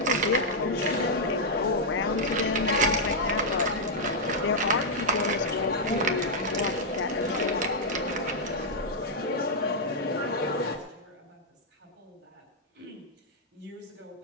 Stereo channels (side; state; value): both; normal; correlation -0.04